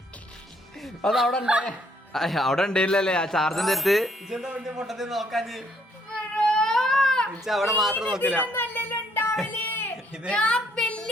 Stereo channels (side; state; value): both; normal; correlation 0.68